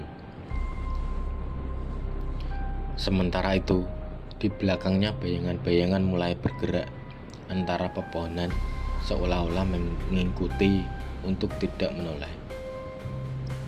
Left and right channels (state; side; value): identical; both; correlation 1.00